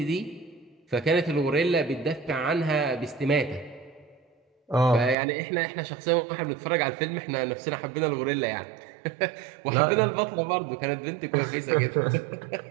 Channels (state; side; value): drops out; left; at 5.2 s